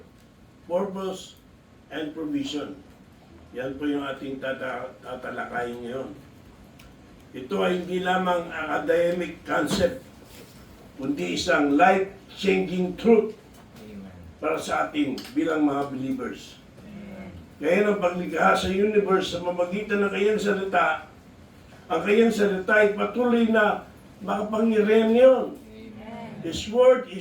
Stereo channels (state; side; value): identical; both; correlation 1.00